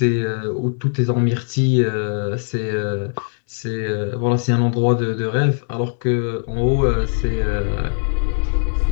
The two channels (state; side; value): silent; right; digital silence